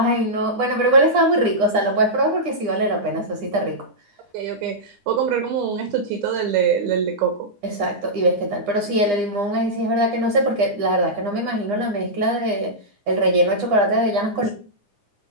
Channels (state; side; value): late; left; 9.8 ms